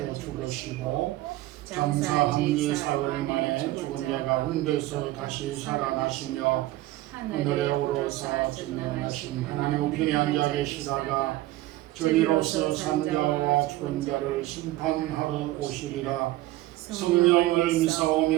죽으시고 장사 한지 사흘 만에 죽은 자 가운데서 다시 살아나시며 하늘에 오르사 전능하신 하나님 우편에 앉아 계시다가 저리로서 산자와 죽은 자를 심판하러 오시리라. 성령을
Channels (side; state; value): left; quieter; 16.8 dB